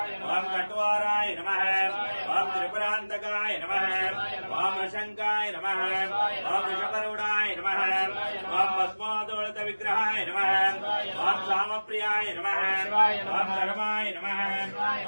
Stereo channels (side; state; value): both; inverted; correlation -1.00